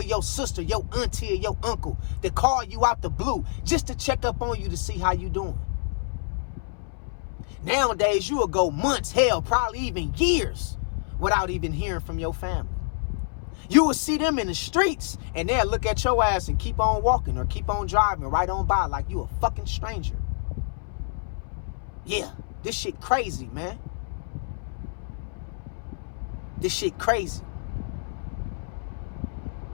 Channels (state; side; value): silent; right; 60 dB below the other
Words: your sister, your auntie, or your uncle to call you out the blue just to check up on you to see how you doing. Nowadays, you will go months, hell, probably even years without even hearing from your family. You will see them in the streets and they'll look at your ass and keep on walking or keep on driving right on by like you a fucking stranger. Yeah, this shit crazy, man. This shit crazy.